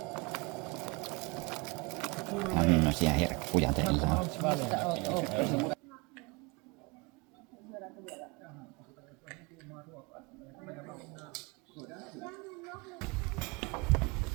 Tämmöisiä herkkuja teillä on.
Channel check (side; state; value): left; quieter; 27.4 dB